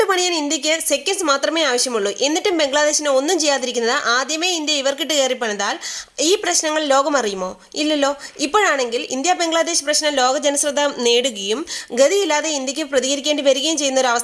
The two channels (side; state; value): both; identical; correlation 1.00